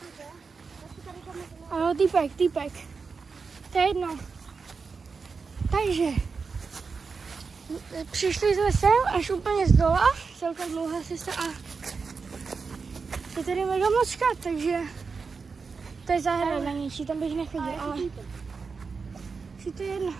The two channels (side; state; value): left; quieter; 4.9 dB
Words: Jo, týpek. To je jedno. Takže přišli jsme sem až úplně z dola, celkem dlouhá cesta a je tady mega moc chat, takže to je zahrada něčí, tam bych nechodil, ale si to je jedno.